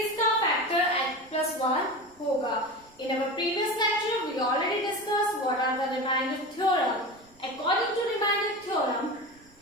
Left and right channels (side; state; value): right; noise; rumble, 29 dB below the sound